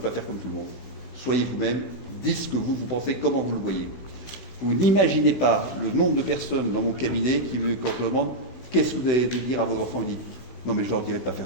faire comme tout le monde. Soyez vous-même, dites ce que vous pensez, comment vous le voyez. Vous n'imaginez pas le nombre de personnes dans mon cabinet qui, quand je leur demande qu'est-ce que vous avez de dire à vos enfants, ils disent non mais je ne leur dirai pas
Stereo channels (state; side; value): late; right; 16 ms